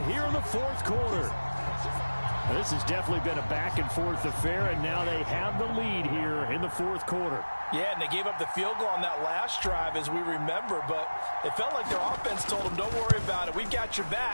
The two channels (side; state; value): both; inverted; correlation -1.00